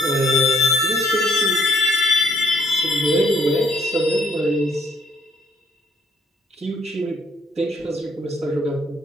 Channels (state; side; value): normal; both; correlation 0.66